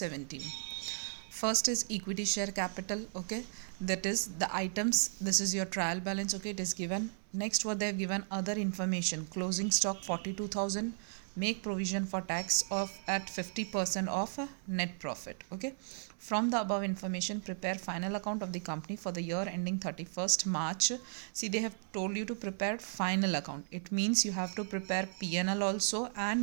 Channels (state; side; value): silent; left; 54 dB below the other